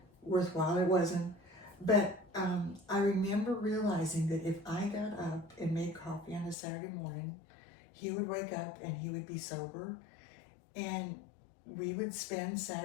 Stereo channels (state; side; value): drops out; right; at 6.6 s